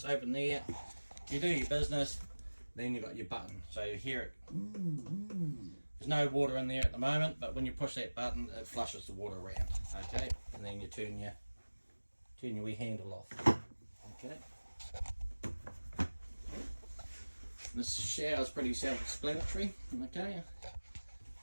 open there. You do your business, then you've got your button, so you hear it. There's no water in there at the moment, but when you push that button, it flushes the water around. Okay, and then you turn your wee handle off. Okay. This shower is pretty self-explanatory. Okay,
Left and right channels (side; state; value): both; inverted; correlation -1.00